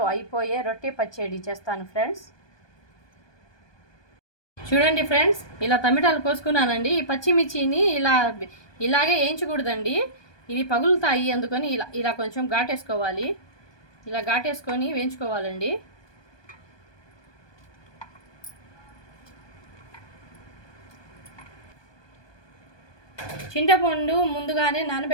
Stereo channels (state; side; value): late; right; 1.2 ms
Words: అయిపోయే రొట్టె పచ్చడి చేస్తాను ఫ్రెండ్స్. చూడండి ఫ్రెండ్స్, ఇలా టమాటాలు కోసుకున్నానండి. ఈ పచ్చిమిర్చిని ఇలాగే వేయించకూడదండి, ఇవి పగులుతాయి. అందుకని ఇలా కొంచెం ఘాటేసుకోవాలి. ఇలా ఘాటేసుకొని వేయించుకోవాలండి. చింతపండు ముందుగానే